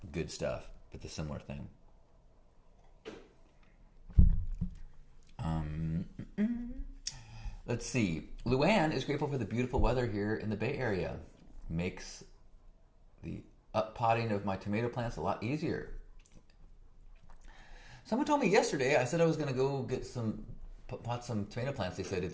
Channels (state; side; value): identical; both; correlation 1.00